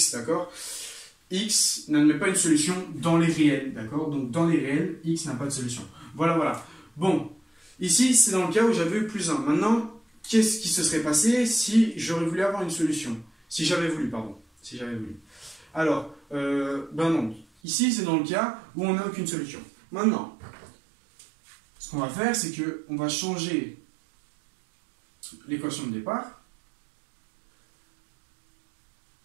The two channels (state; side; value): drops out; left; at 17.4 s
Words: d'accord? X n'admet pas une solution dans les réels, d'accord? Donc, dans les réels, x n'a pas de solution. Voilà, voilà. Bon, Ici, c'est dans le cas où j'avais eu plus 1. Maintenant, qu'est-ce qui se serait passé si j'aurais voulu avoir une solution? Si j'avais voulu, pardon. Si j'avais voulu. Alors, ben non. Ici, c'est dans le cas où on n'a aucune solution. Maintenant, ce qu'on va faire, c'est qu'on va changer l'équation de départ.